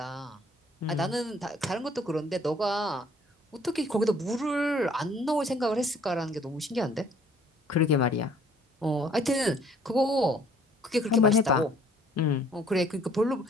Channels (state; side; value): normal; both; correlation 0.58